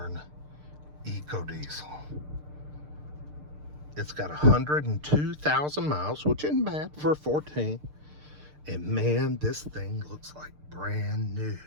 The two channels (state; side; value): late; left; 6.7 ms